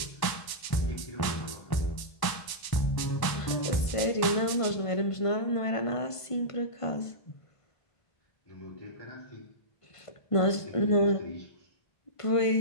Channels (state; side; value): late; right; 1.1 ms